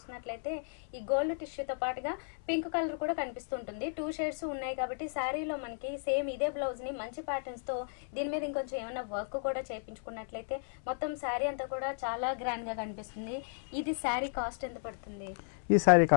ఈ గోల్డ్ టిష్యూతో పాటుగా పింక్ కలర్ కూడా కనిపిస్తుంటుంది. 2 షేడ్స్ ఉన్నాయి కాబట్టి శారీలో మనకి సేమ్ ఇదే బ్లౌజ్ ని మంచి ప్యాటర్న్స్ తో దీని మీద ఇంకొంచెం ఏమైనా వర్క్ కూడా చేయించుకున్నట్లయితే మొత్తం శారీ అంతా కూడా చాలా గ్రాండ్ గా కనిపిస్తుంది. ఇది శారీ కాస్ట్ ఎంత పడుతుంది? ఈ సారీ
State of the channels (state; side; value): silent; right; 55 dB below the other